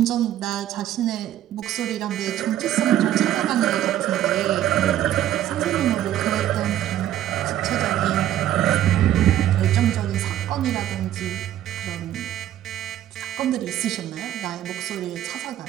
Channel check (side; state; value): left; quieter; 12.3 dB